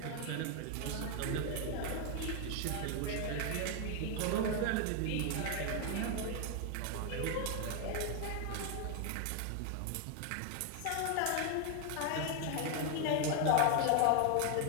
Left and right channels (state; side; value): different; both; correlation 0.00